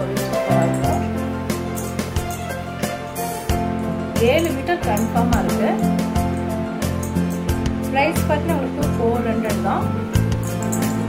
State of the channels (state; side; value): identical; both; correlation 1.00